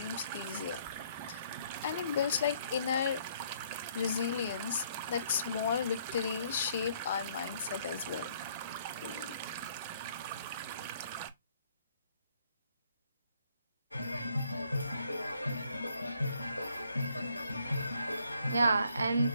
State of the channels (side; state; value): both; inverted; correlation -0.66